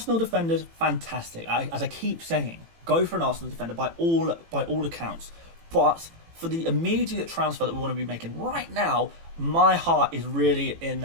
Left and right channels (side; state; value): left; late; 18 ms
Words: defenders, fantastic. As I keep saying, go for an Arsenal defender by all accounts. But for the immediate transfer that we want to be making right now, my heart is really in